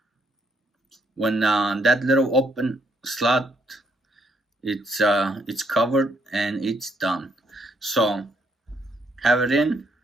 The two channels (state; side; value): normal; both; correlation 0.72